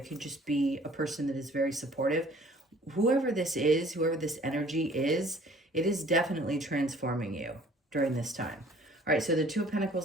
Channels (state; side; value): normal; both; correlation 0.54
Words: could just be a person that is very supportive. Whoever this is, whoever this energy is, it is definitely transforming you during this time. All right, so the Two of